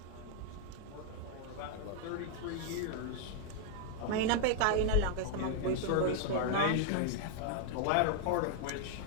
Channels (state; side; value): different; both; correlation 0.00